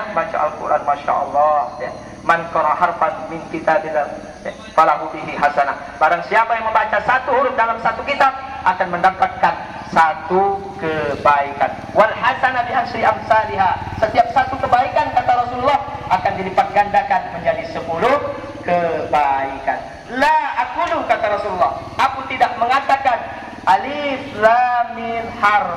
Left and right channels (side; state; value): both; identical; correlation 1.00